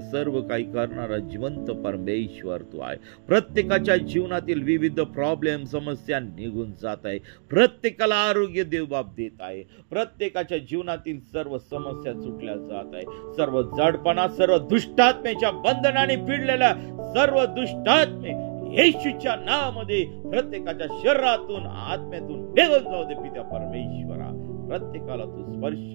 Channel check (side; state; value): left; silent; digital silence